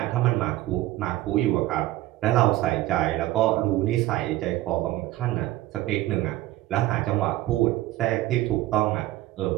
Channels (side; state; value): left; quieter; 16.1 dB